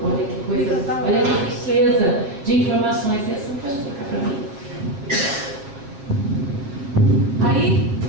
Olha que coisa, olha que riqueza de informações. Essa não pode trocar para mim. Aí,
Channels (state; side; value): late; left; 7.2 ms